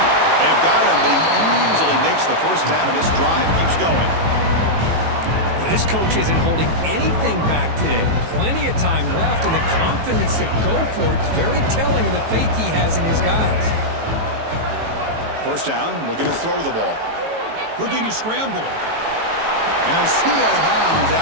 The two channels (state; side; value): late; left; 18 ms